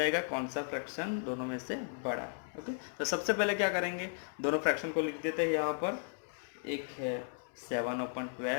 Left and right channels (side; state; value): right; silent; digital silence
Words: कौन सा फ्रैक्शन दोनों में से बड़ा। ओके, तो सबसे पहले क्या करेंगे, दोनों फ्रैक्शन को लिख देते हैं यहाँ पर। एक है